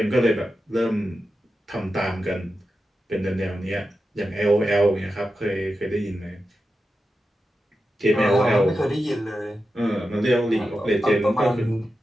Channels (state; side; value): normal; both; correlation 0.90